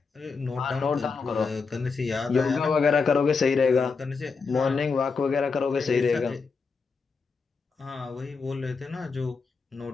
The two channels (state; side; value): quieter; right; 4.8 dB